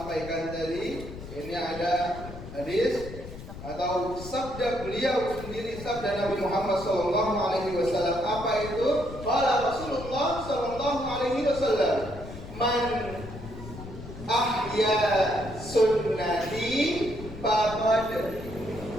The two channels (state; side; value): noise; left; rumble, 12 dB below the sound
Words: tadi, ini ada hadis atau sabda beliau sendiri, sabda Nabi Muhammad Sallallahu Alaihi Wasallam. Apa itu? Qala Rasulullah Sallallahu Alaihi Wasallam, man ahya sunnati faqad